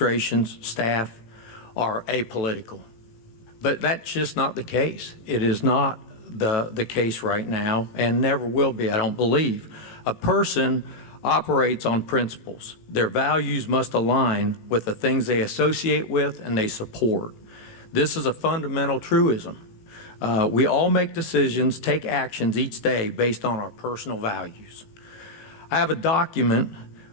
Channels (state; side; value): late; right; 18 ms